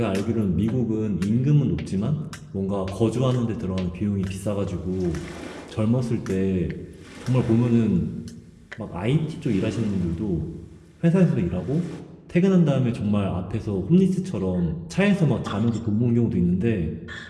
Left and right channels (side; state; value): both; identical; correlation 1.00